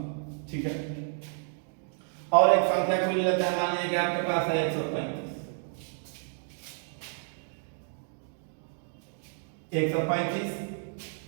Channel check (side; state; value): left; silent; 58 dB below the other